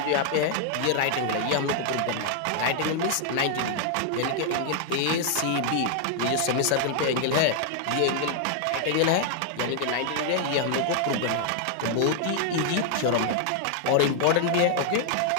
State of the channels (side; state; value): both; different; correlation 0.00